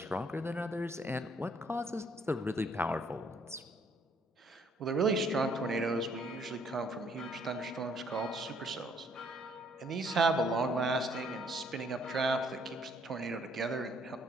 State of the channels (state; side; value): normal; both; correlation 0.65